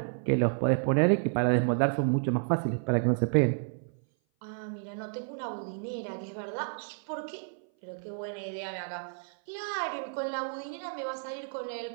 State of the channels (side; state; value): left; silent; 56 dB below the other